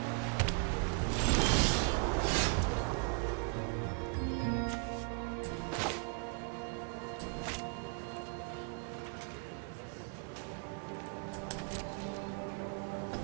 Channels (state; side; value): quieter; left; 37.1 dB